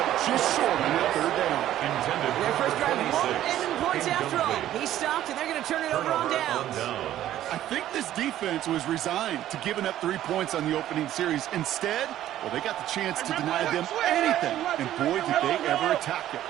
up just short on that 3rd down? Their first drive won't end in points after all. He stopped, and they're going to turn it over on downs. I think this defense was resigned to giving up 3 points on the opening series. Instead, well, they got the chance to deny them anything, and boy, did they ever attack it.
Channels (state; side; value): quieter; left; 12.7 dB